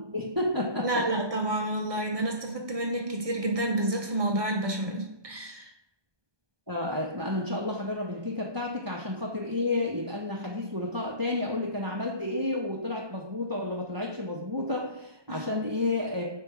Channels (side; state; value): left; late; 1.2 ms